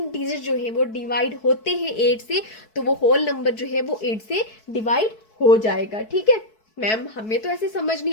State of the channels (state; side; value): late; right; 4.6 ms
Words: डिजिट जो है वो डिवाइड होते हैं 8 से तो वो होल नंबर जो है वो 8 से डिवाइड हो जाएगा। ठीक है मैम, हमें तो ऐसे समझ